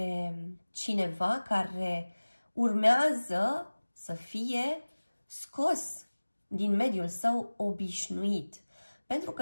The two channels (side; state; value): both; inverted; correlation -1.00